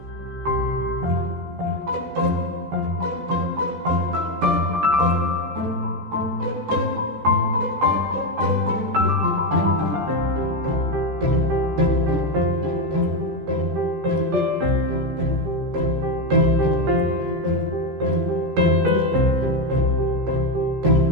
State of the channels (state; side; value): late; left; 14 ms